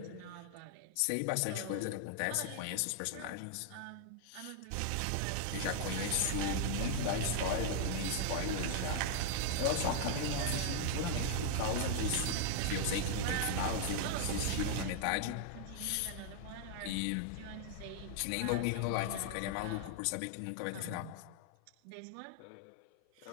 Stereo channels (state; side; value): different; both; correlation 0.00